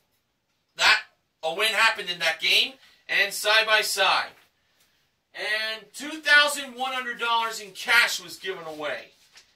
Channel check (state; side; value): identical; both; correlation 1.00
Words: a win happened in that game, and Side by Side. And $2,100 in cash was given away.